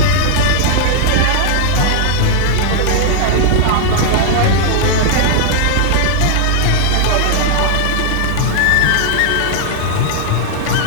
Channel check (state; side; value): different; both; correlation 0.00